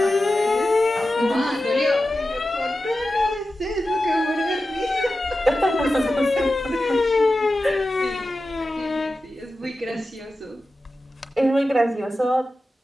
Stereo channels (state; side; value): normal; both; correlation 0.93